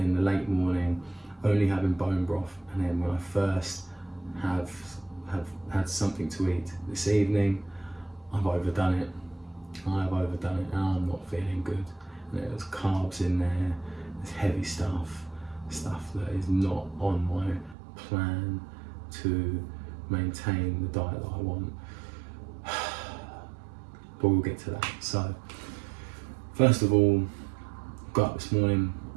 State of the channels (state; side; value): drops out; left; at 17.8 s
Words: the late morning, only having bone broth, and then when I first have had something to eat this evening, I've overdone it. I have overdone it, and I'm not feeling good. And there's carbs in there, there's heavy stuff that is not on my plan to maintain the diet that I want. But we'll get to that. So, first of all, got up this morning.